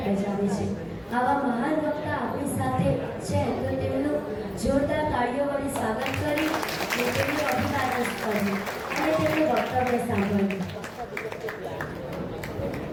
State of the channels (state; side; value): identical; both; correlation 1.00